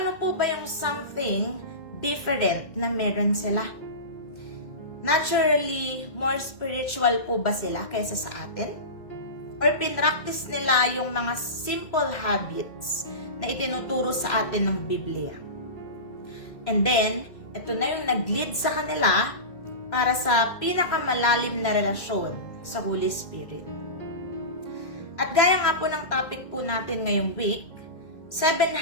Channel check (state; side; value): late; right; 2.2 ms